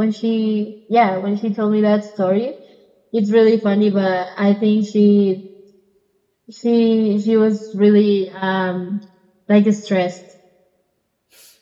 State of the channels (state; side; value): identical; both; correlation 1.00